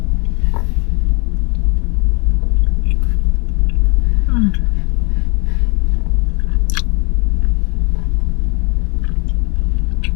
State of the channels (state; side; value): quieter; right; 33.2 dB